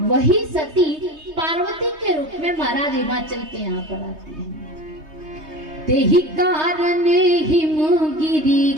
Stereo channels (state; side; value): late; left; 3.2 ms